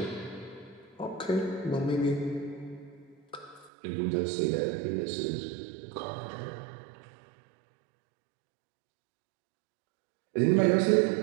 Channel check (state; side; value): drops out; left; at 3.7 s